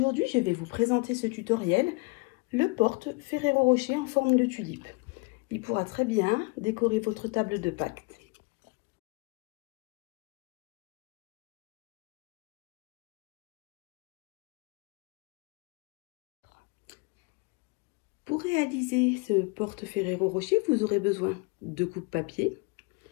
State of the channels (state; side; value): quieter; right; 28.0 dB